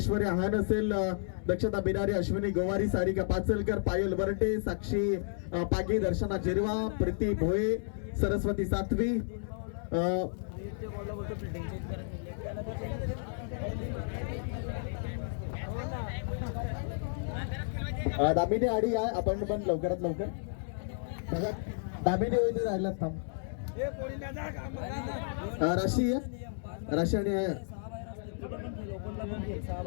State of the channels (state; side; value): silent; right; digital silence